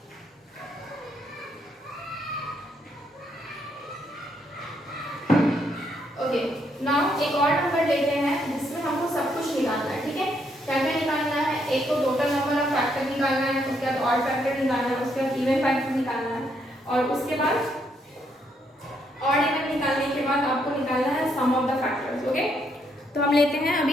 Okay, now एक और नंबर लेते हैं जिसमें हमको सब कुछ निकालना है। ठीक है, क्या क्या निकालना है, एक तो टोटल नंबर ऑफ फैक्टर निकालना है, उसके बाद ऑड फैक्टर निकालना है, उसके बाद इवन फैक्टर निकालना है, और उसके बाद ऑड इवन निकालने के बाद आपको निकालना है सम ऑफ द फैक्टर्स। ओके, तो हम लेते हैं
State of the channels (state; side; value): normal; both; correlation 0.74